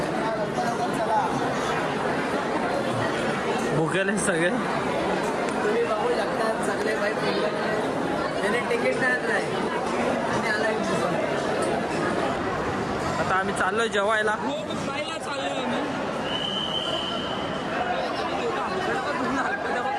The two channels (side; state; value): both; identical; correlation 1.00